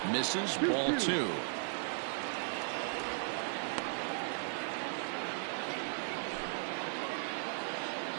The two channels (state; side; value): silent; left; digital silence